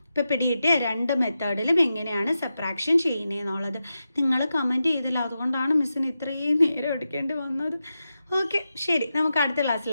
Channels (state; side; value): inverted; both; correlation -0.90